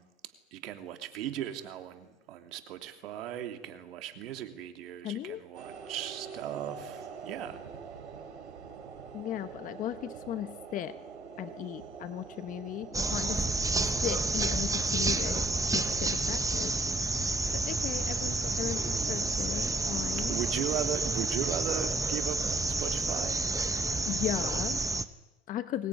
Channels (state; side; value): normal; both; correlation 0.65